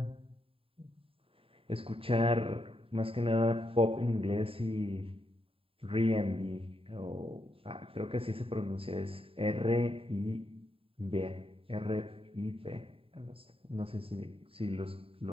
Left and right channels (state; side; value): late; left; 0.27 ms